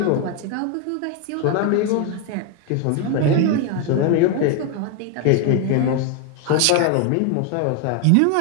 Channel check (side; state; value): both; different; correlation 0.01